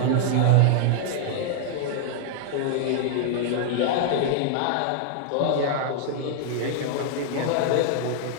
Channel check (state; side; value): different; both; correlation 0.00